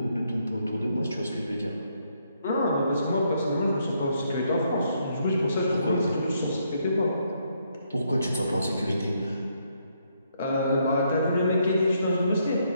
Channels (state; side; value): inverted; both; correlation -0.74